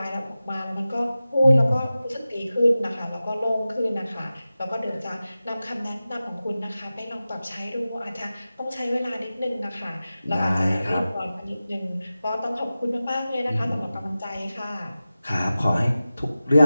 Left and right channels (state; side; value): inverted; both; correlation -0.95